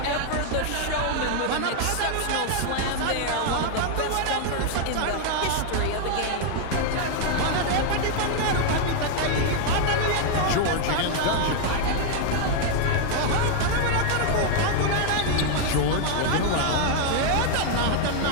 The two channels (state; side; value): different; both; correlation 0.00